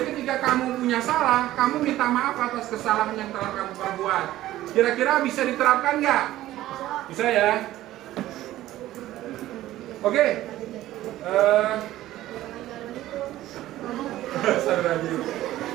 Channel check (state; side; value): quieter; left; 14.8 dB